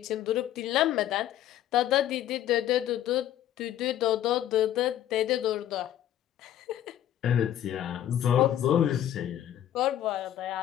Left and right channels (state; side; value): quieter; right; 11.7 dB